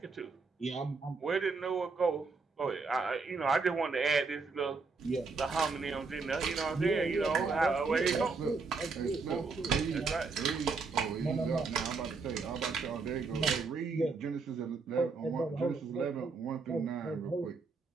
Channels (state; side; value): quieter; left; 4.4 dB